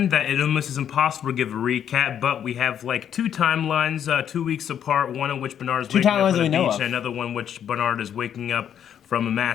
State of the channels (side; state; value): right; quieter; 9.2 dB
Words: that it almost is impossible to give a recap, but we have like two timelines, 2 weeks apart, one in which Bernard is waking up on the beach, and another one which Bernard is waking up from a